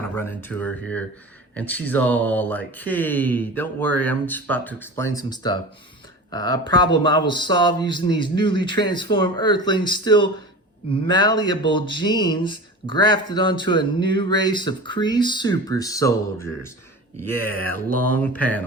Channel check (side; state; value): both; normal; correlation 0.33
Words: of run into her here, and she's all like, hey, don't worry, I'm just about to explain some stuff. A problem I will solve using these newly transformed Earthlings, still malleable genes grafted onto a new race of Kree super soldiers. Yeah, long